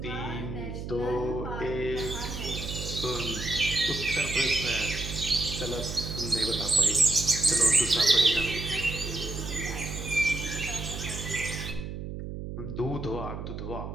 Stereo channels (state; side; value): noise; right; hum, 7 dB below the sound